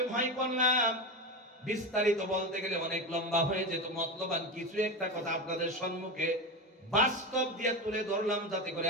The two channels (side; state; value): both; normal; correlation 0.19